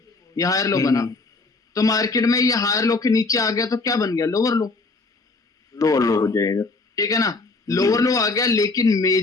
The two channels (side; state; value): right; quieter; 3.5 dB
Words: ये हायर लो बना। तो मार्केट में ये हायर लो के नीचे आ गया तो क्या बन गया? लोअर लो। लो हो जाएगा। ठीक है ना? लोअर लो आ गया, लेकिन